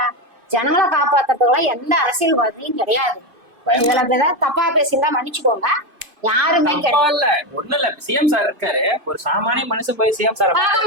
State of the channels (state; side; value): late; left; 2.5 ms